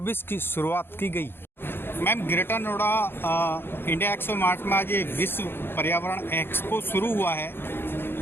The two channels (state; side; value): late; right; 0.11 ms